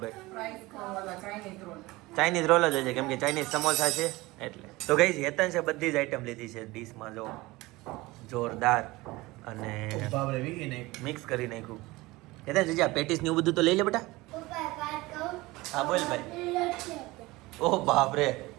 Price વાળા Chinese roll. ચાઇનીઝ રોલ જ છે કેમ કે ચાઇનીઝ સમોસા છે એટલે. તો ગઈ હેતન છે બધી જ આઈટમ લીધી છે ડીશમાં. જો જોરદાર અને બાબરે વીગી નહીં. મિક્સ કરી નાખ્યું. હેતન જીજા પેટીસ ને એવું બધું તો લઈ લે બેટા. હા બોલ ભાઈ. ઓહ બાપ રે,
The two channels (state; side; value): quieter; left; 20.8 dB